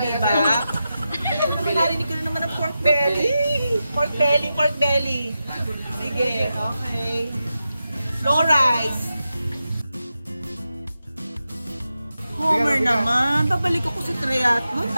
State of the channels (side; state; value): both; inverted; correlation -0.90